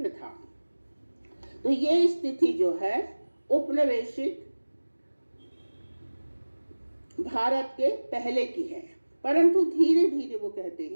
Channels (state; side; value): inverted; both; correlation -1.00